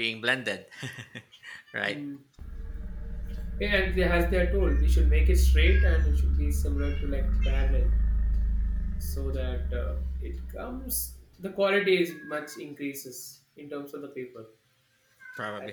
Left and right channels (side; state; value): both; identical; correlation 1.00